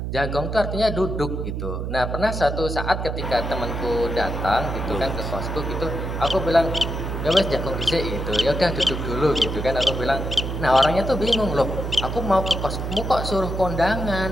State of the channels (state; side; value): noise; right; hum, 4 dB below the sound